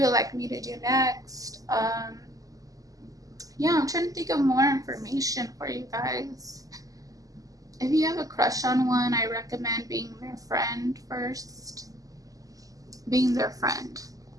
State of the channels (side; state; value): left; late; 0.17 ms